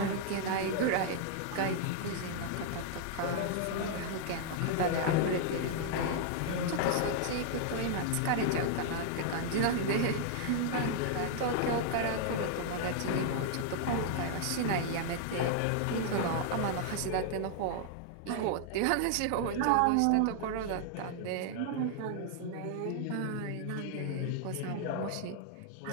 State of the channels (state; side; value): different; both; correlation -0.01